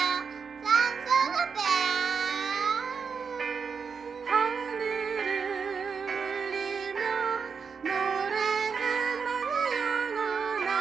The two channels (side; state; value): left; quieter; 5.8 dB